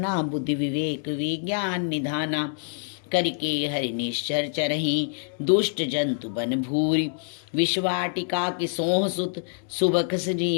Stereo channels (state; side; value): silent; right; digital silence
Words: बुद्धि विवेक विज्ञान निधाना। करिके हरि निश्चर चरही, दुष्ट जंतु बन भूरी। विश्वाटिका की सोह सुत, सुबख